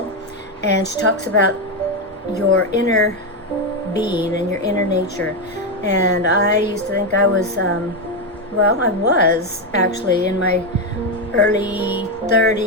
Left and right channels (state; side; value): normal; both; correlation 0.07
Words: and she talks about your inner being and your inner nature. And I used to think I was well, I was actually in my early